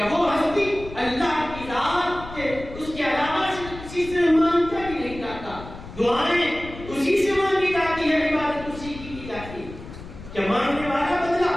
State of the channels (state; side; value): noise; left; rumble, 14 dB below the sound